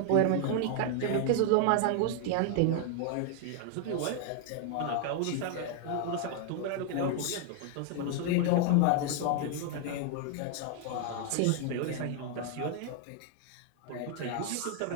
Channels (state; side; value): different; both; correlation 0.00